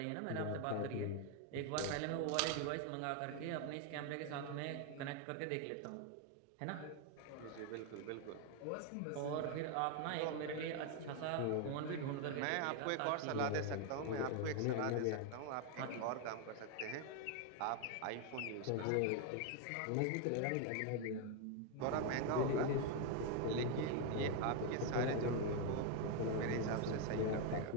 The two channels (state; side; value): different; both; correlation 0.01